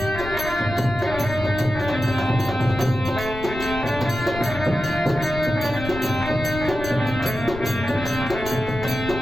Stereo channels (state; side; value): noise; left; rumble, 10 dB below the sound